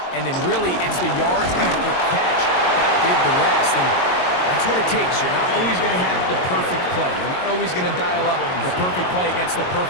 and then really it's the yards after catch that did the rest. And that's what it takes. You're not always going to have the perfect play. You're not always going to dial up the perfect play against the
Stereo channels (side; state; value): right; late; 22 ms